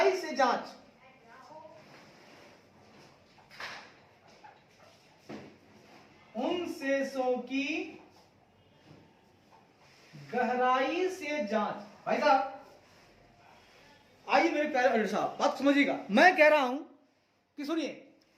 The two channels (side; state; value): both; identical; correlation 1.00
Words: से जांच, उन शेषों की गहराई से जांच। भाई साहब आइए मेरे प्यारे अल्टर साहब, बात समझिएगा। मैं कह रहा हूं कि सुनिए,